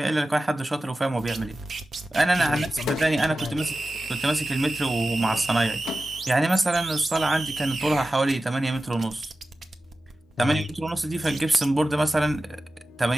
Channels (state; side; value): normal; both; correlation 0.94